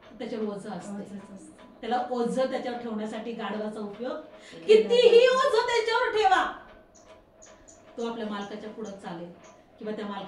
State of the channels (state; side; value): identical; both; correlation 1.00